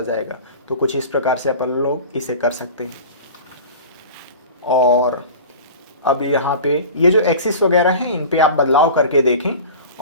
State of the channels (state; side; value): inverted; both; correlation -0.36